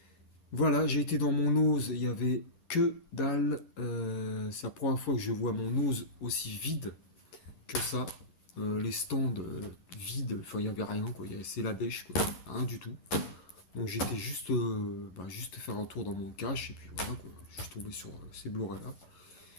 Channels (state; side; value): late; right; 11 ms